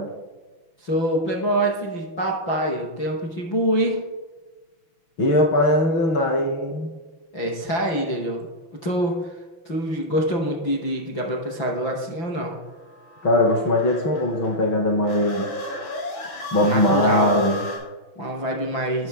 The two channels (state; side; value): late; right; 6.1 ms